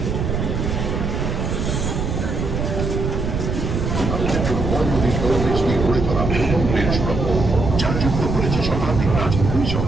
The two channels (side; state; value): right; noise; rumble, 2 dB below the sound